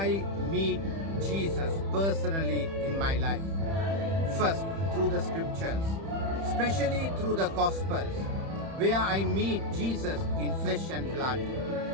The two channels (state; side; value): late; left; 31 ms